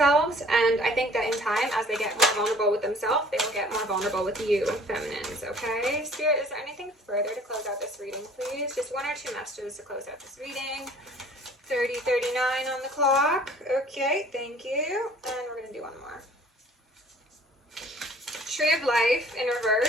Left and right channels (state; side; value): normal; both; correlation 0.52